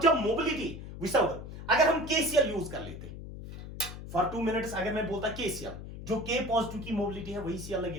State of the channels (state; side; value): noise; left; hum, 11 dB below the sound